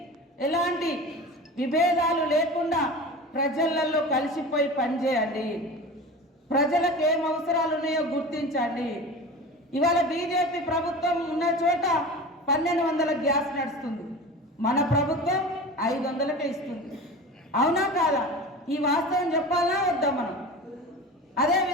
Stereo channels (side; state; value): both; normal; correlation 0.33